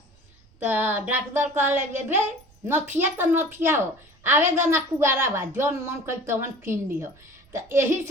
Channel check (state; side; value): noise; right; rumble, 30 dB below the sound